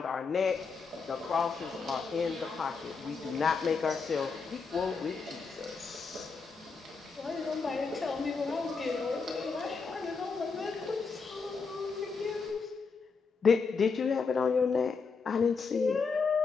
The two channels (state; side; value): quieter; right; 5.0 dB